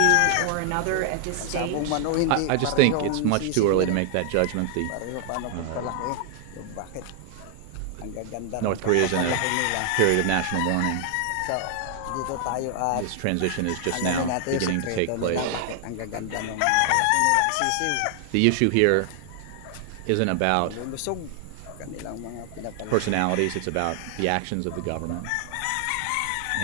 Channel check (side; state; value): both; different; correlation 0.00